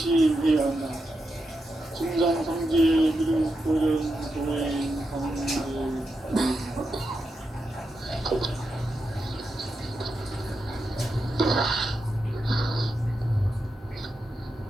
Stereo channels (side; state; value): both; normal; correlation 0.87